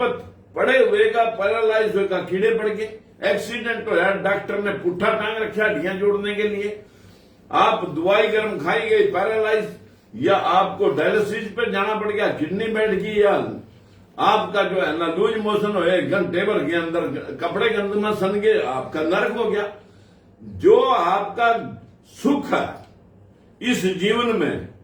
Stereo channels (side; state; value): both; identical; correlation 1.00